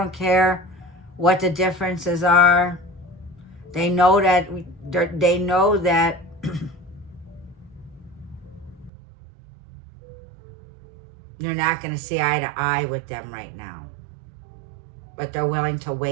care what the differences are. They know that you're not going to see eye to eye with them right now. But they're willing to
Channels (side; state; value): left; drops out; at 8.9 s